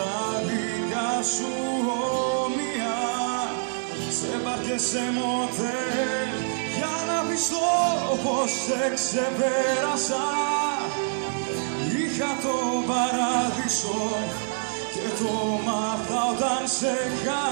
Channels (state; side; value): silent; left; digital silence